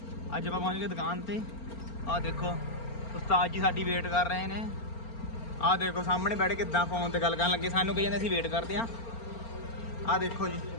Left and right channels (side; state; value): right; late; 4.4 ms